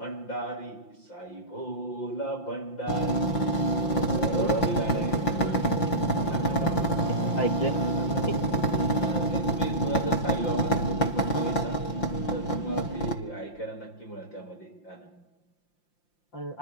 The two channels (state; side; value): late; right; 5.8 ms